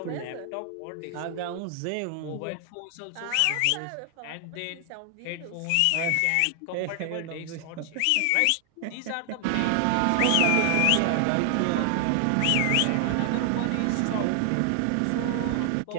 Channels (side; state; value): both; different; correlation 0.00